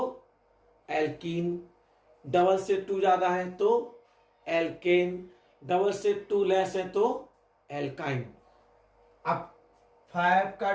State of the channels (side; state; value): both; identical; correlation 1.00